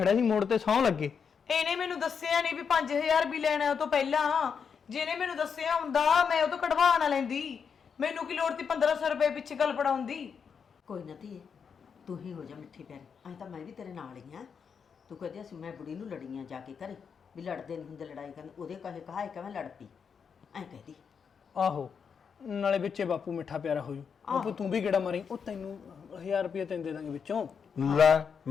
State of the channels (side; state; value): right; quieter; 6.5 dB